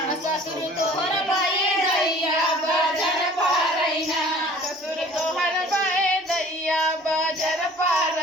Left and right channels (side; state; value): both; normal; correlation 0.49